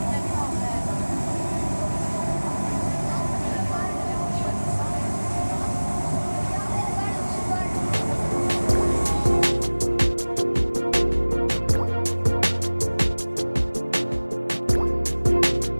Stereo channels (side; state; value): both; inverted; correlation -1.00